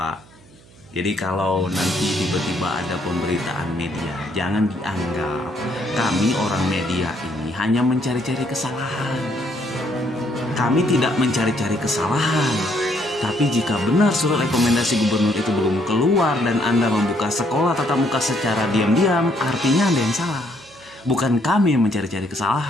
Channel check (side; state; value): right; noise; hum, 25 dB below the sound